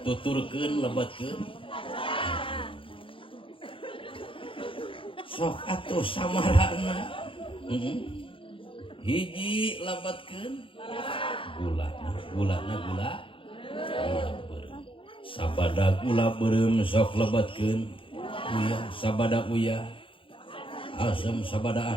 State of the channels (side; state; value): right; late; 0.25 ms